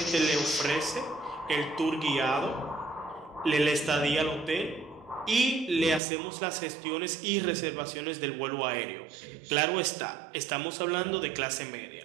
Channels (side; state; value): left; drops out; at 6.0 s